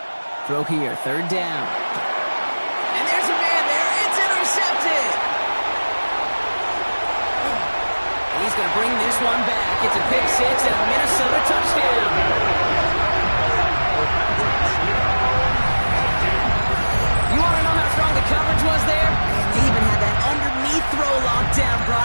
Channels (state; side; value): inverted; both; correlation -1.00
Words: Throw here, third down. And there's a man there. It's intercepted. And he's going to bring this one back. It's a pick six and a Minnesota touchdown. You want to know how strong the coverage was there? They even had that underneath throw locked down,